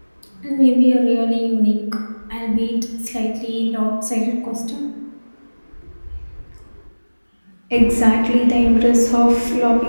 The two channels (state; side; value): inverted; both; correlation -1.00